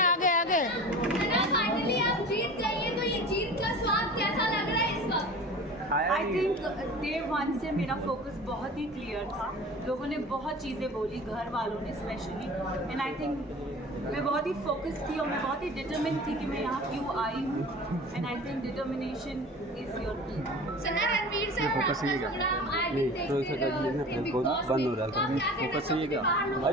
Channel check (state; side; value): normal; both; correlation 0.38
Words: आगे आगे। फाइनली आप जीत गई हैं, तो ये जीत का स्वाद कैसा लग रहा है इस वक्त? आई थिंक डे 1 से मेरा फोकस बहुत ही क्लियर था। लोगों ने बहुत चीज़ें बोली, घर वालों ने स्पेशली, एंड आई थिंक मैं बहुत ही फोकस थी और मैं बहुत ही डिटरमिन थी कि मैं यहाँ क्यों आई हूँ। And I think determination is your की। सना रणवीर से फोकस नहीं प्रोग्राम आज नहीं, तो इसका बंद हो रहा है। फोकस सही है क्या?